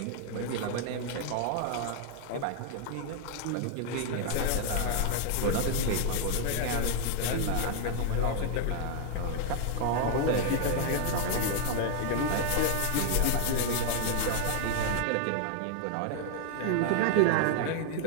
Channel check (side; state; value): both; different; correlation 0.00